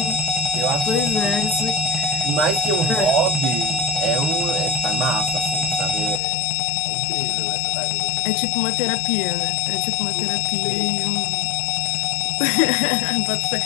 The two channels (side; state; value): right; drops out; at 6.2 s